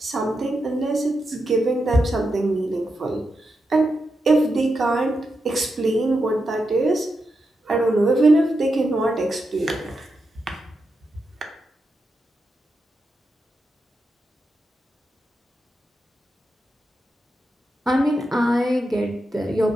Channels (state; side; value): normal; both; correlation 0.87